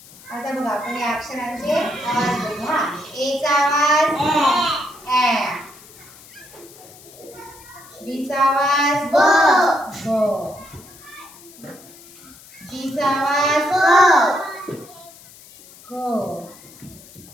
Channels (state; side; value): noise; left; hiss, 21 dB below the sound